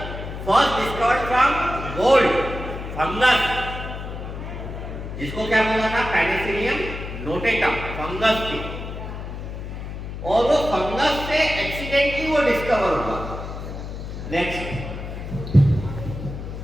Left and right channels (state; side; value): noise; left; hum, 8 dB below the sound